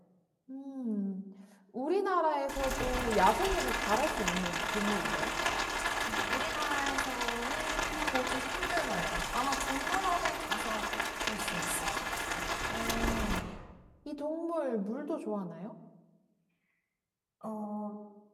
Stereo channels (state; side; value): identical; both; correlation 1.00